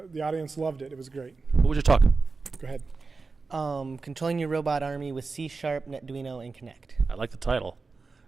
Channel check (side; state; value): left; quieter; 4.2 dB